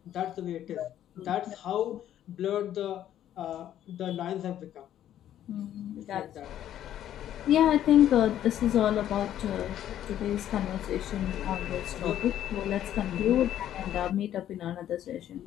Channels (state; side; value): quieter; right; 11.4 dB